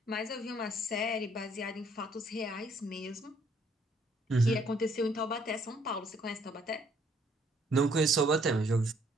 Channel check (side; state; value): both; normal; correlation 0.65